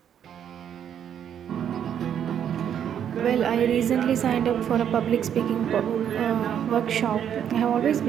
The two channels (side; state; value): left; quieter; 9.1 dB